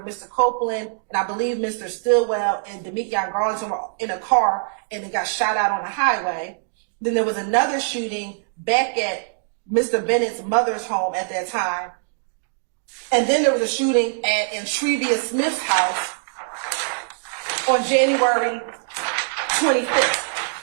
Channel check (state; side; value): silent; left; digital silence